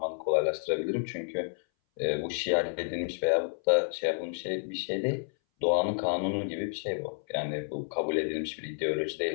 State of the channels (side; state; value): right; silent; 58 dB below the other